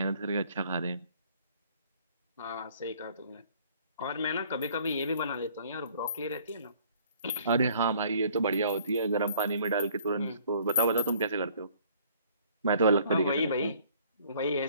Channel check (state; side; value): inverted; both; correlation -0.57